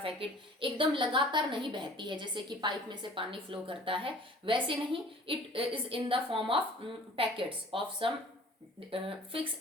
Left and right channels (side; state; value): both; normal; correlation 0.49